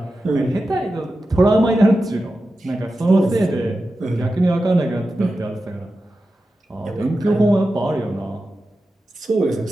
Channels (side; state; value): both; normal; correlation 0.92